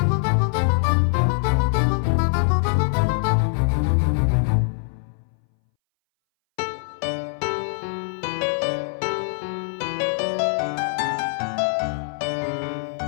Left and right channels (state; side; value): silent; right; 61 dB below the other